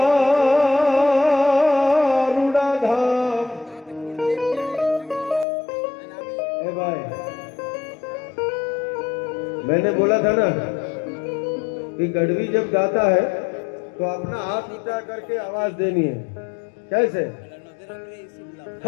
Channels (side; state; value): right; drops out; at 5.5 s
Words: રૂડા ધામ। ए भाई, मैंने बोला था ना कि गढ़वी जब गाता है तो अपना हाथ ऊंचा करके आवाज देनी है। कैसे?